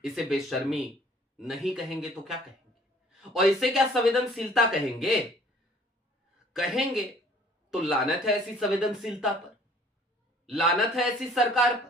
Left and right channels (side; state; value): both; normal; correlation 0.55